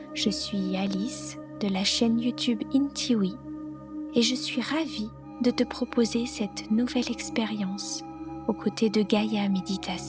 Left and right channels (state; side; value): identical; both; correlation 1.00